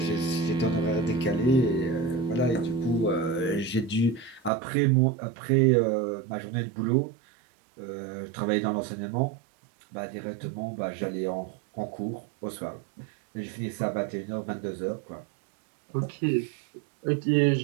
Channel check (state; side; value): drops out; left; at 4.5 s